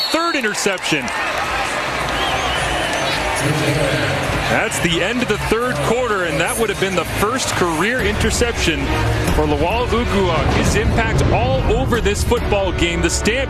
interception. That's the end of the 3rd quarter, and that would have been the first career interception for Lawal Uguak. His impact all over this football game. The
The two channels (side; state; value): both; identical; correlation 1.00